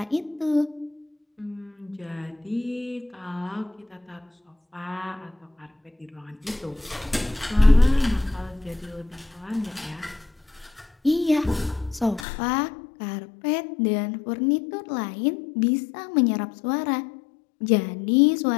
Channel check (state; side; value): drops out; right; at 12.2 s